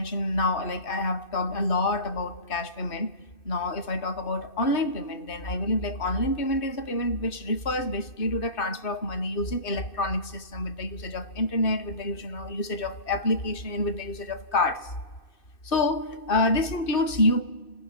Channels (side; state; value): right; late; 2.6 ms